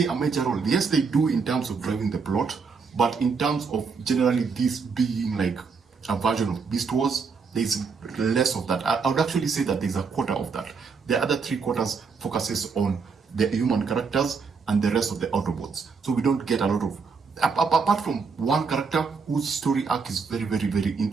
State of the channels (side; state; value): left; quieter; 5.2 dB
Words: a major role. Yes, they do in terms of driving the plot, but in terms of generally this being like a version of Beast Wars, there's less of that. I would actually say that there's a quarter of that. The other 3/4 focuses on the human characters and the rest of the Autobots. So we don't get a lot of, apart from one character whose story arc is very, very, very